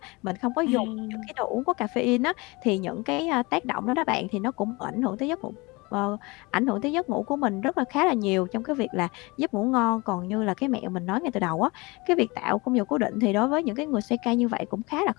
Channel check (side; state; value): right; quieter; 25.2 dB